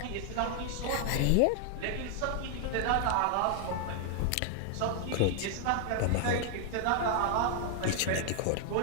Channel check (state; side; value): different; both; correlation 0.00